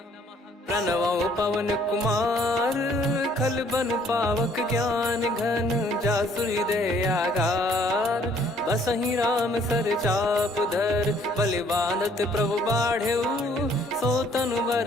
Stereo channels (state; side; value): normal; both; correlation 0.62